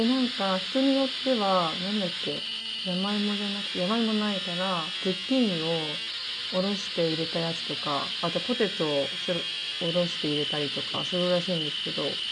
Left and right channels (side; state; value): both; identical; correlation 1.00